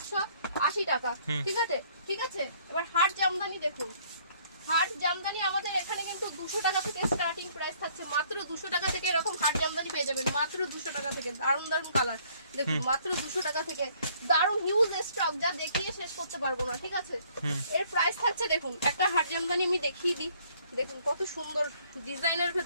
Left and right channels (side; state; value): both; inverted; correlation -0.61